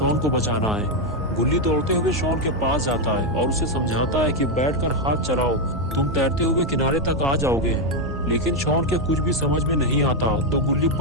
को बचाना है। गुल्ली दौड़ते हुए शॉन के पास जाता है और उसे समझाता है कि बैठकर हाथ चलाओ, तुम तैरते हुए किनारे तक आ जाओगे। लेकिन शॉन के कुछ भी समझ में नहीं आता तो गुल्ली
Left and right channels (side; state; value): both; normal; correlation 0.03